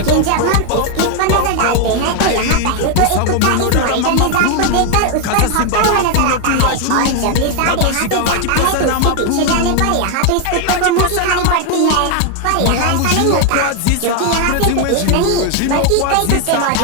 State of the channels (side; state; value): both; different; correlation 0.01